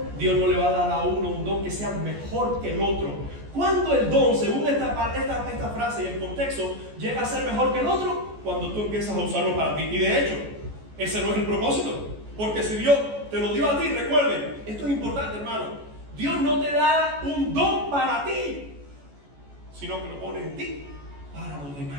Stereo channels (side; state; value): left; late; 14 ms